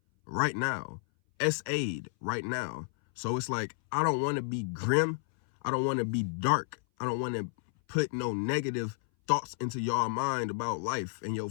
right now. SA'd right now. So it's like, I don't want to be grim. I don't want to be dark. I don't want to put no negative thoughts into your mind about life and your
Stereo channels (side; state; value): right; silent; 57 dB below the other